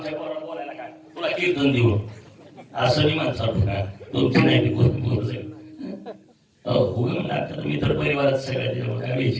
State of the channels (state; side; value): identical; both; correlation 1.00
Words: पोराला बोलायला काय, तुला कीर्तन देऊ असं मी माणसाला का तुमची नाही कोण बोलत मी तर परिवारात सगळ्या काय